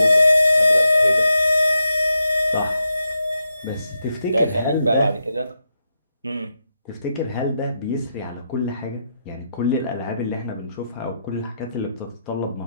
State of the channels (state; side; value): inverted; both; correlation -0.85